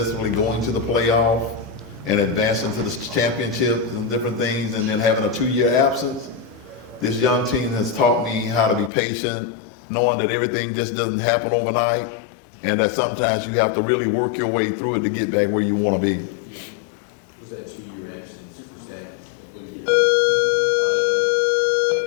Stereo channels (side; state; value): right; drops out; at 8.9 s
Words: going to the playoff and advancing to the championships and different things, and then having a 2-year absence, this young team has taught me how to be patient, knowing that everything just doesn't happen overnight, and that sometimes you have to really work your way through it to get back where you want to be. Was that 2-year absence? Was that did